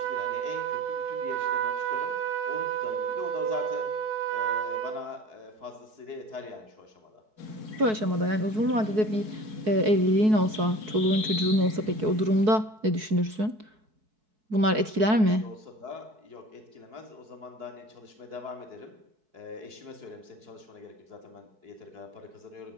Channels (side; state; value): left; late; 4.6 ms